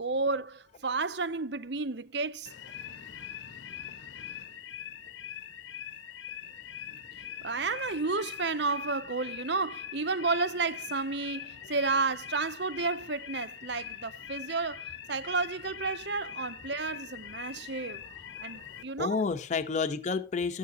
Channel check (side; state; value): both; normal; correlation -0.18